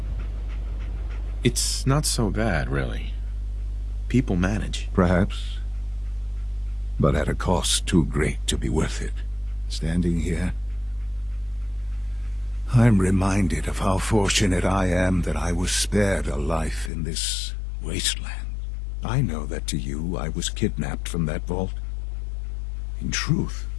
it's not so bad, really. People manage. Perhaps. But at a cost too great to be worth it. Standing here, I'm reminded of how fortunate I am that I was spared a life in this wasteland. I know that to you, I was kidnapped from that vault. In truth,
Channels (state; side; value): drops out; right; at 16.9 s